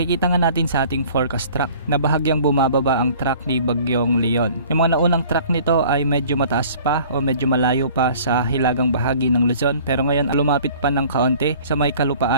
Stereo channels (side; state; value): both; inverted; correlation -0.50